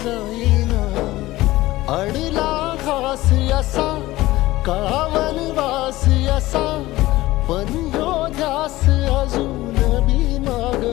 जाईना. अडला घास असा काळा वनवास असा, पण ह्यो ध्यास अजून बी माग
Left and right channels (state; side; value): quieter; right; 17.7 dB